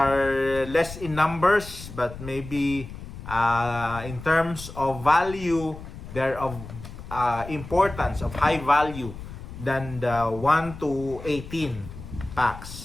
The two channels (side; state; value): left; noise; rumble, 12 dB below the sound